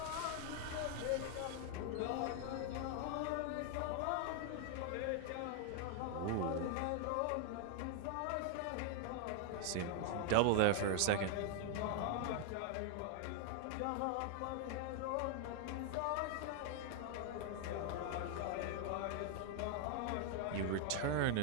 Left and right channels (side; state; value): both; different; correlation 0.00